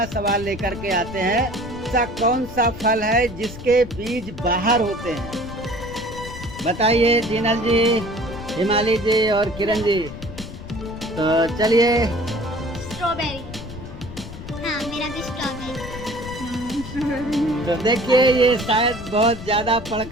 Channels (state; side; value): noise; left; rumble, 12 dB below the sound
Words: सवाल लेकर के आते हैं। ऐसा कौन सा फल है जिसके बीज बाहर होते हैं? बताइए जीनल जी, हिमाली जी और किरण जी। तो चलिए। स्ट्रॉबेरी। हाँ, मेरा मेरा भी स्ट्रॉबेरी। तो देखिए ये शायद बहुत ज्यादा पढ़